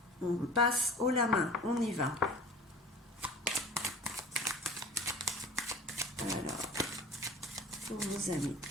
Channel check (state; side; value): normal; both; correlation 0.43